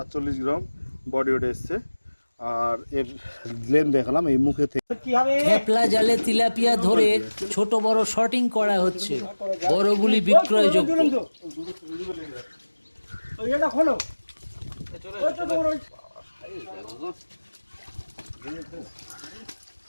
গ্রাম বডি ওয়েট এসছে। আর এর লেন দেখালাম এই মুখে থেকে। খেপলা জালে তিলাপিয়া ধরে ছোট বড় শর্টিং করা হচ্ছে, বড়গুলি বিক্রয়যোগ্য।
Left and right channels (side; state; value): both; inverted; correlation -1.00